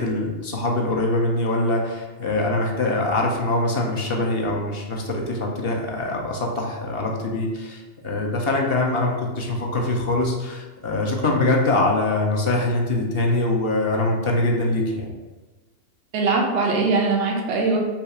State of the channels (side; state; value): left; late; 2.8 ms